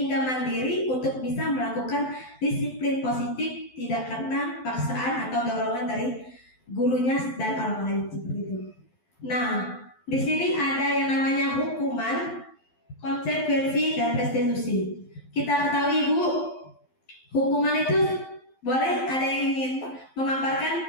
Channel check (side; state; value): right; late; 12 ms